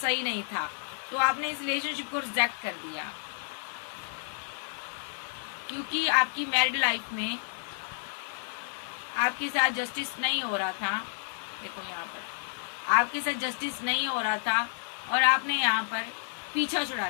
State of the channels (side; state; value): right; silent; digital silence